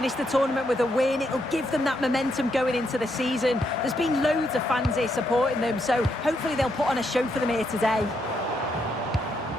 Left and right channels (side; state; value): both; normal; correlation 0.78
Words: the tournament with a win. It'll give them that momentum going into the season. There's been loads of fans here supporting them, so hopefully they'll put on a show for them here today.